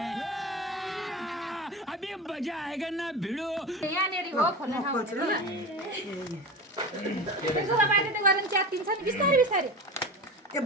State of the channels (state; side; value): normal; both; correlation 0.28